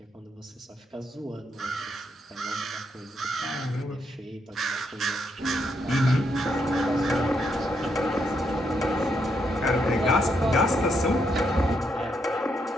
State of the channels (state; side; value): normal; both; correlation 0.78